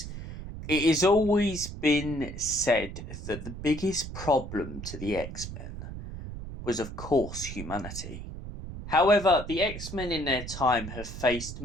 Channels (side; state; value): right; noise; rumble, 9 dB below the sound